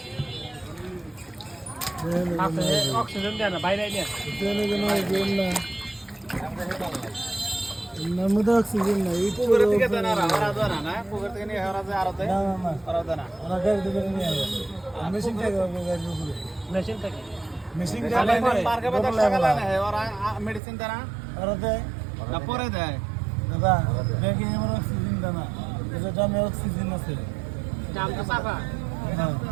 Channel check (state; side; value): drops out; left; at 20.6 s